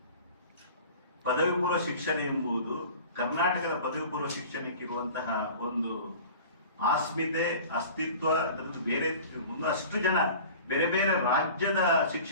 ಪದವಿ ಪೂರ್ವ ಶಿಕ್ಷಣ ಎಂಬುದು ಕರ್ನಾಟಕದ ಪದವಿ ಪೂರ್ವ ಶಿಕ್ಷಣಕ್ಕಿರುವಂತಹ ಒಂದು ಆಸ್ಮಿತೆ, ಅಸ್ತಿತ್ವ, ಬೇರೆ ಅಷ್ಟು ಜನ ಬೇರೆ ಬೇರೆ ರಾಜ್ಯದ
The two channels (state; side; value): inverted; both; correlation -0.41